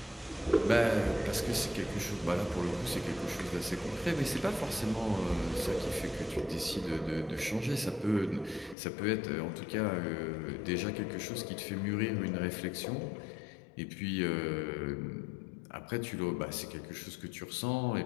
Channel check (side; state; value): right; drops out; at 8.8 s